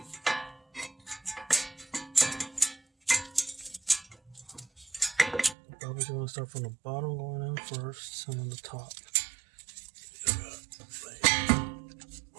Probably going to start from the bottom, going in first, and then the top.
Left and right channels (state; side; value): drops out; left; at 5.6 s